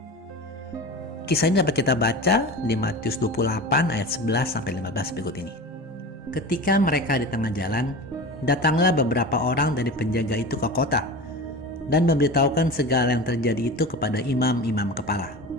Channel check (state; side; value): normal; both; correlation 0.31